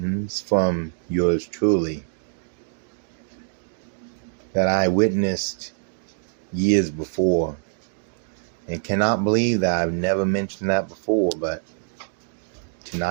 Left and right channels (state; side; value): silent; left; 59 dB below the other